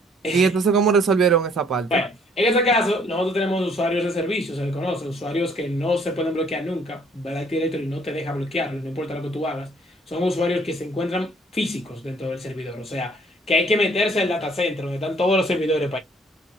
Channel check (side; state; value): both; normal; correlation 0.61